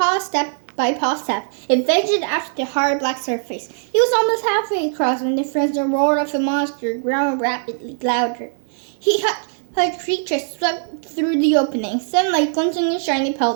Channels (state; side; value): silent; left; digital silence